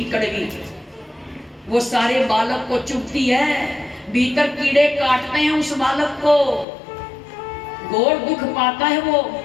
कड़वी, वो सारे बालक को चुभती है, भीतर कीड़े काटते हैं उस बालक को, घोर दुख पाता है वो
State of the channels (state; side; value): drops out; right; at 6.7 s